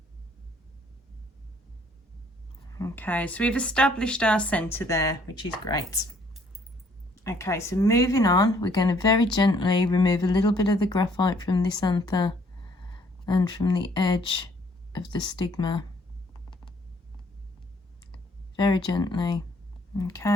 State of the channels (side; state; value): both; normal; correlation 0.63